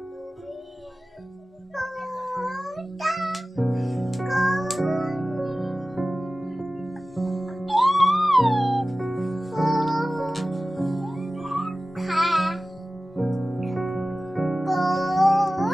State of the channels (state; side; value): normal; both; correlation 0.96